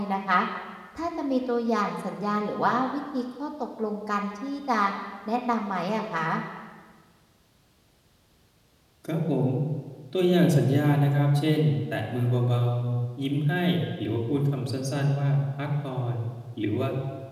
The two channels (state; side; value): identical; both; correlation 1.00